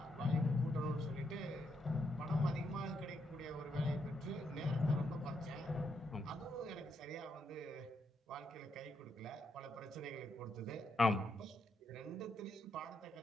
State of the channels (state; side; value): normal; both; correlation 0.79